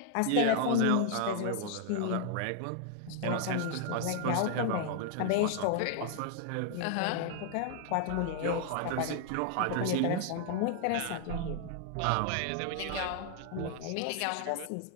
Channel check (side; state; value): both; different; correlation 0.00